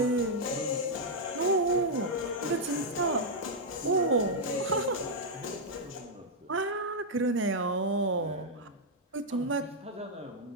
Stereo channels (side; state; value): both; normal; correlation -0.03